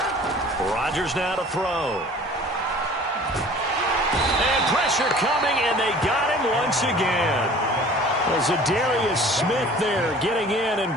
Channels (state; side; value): normal; both; correlation 0.47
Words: Rodgers now to throw. And pressure coming, and they got him once again. Well, Zadarius Smith there getting in and